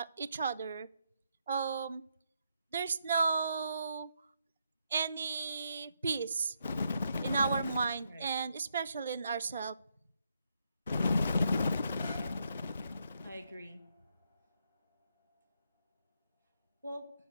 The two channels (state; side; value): inverted; both; correlation -0.78